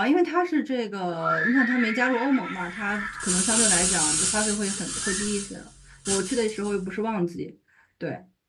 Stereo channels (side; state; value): both; identical; correlation 1.00